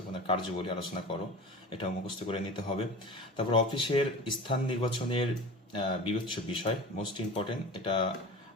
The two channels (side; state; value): both; normal; correlation 0.35